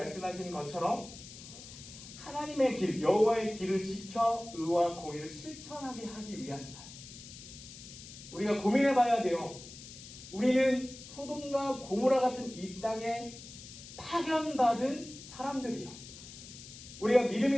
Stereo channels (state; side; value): noise; left; hiss, 15 dB below the sound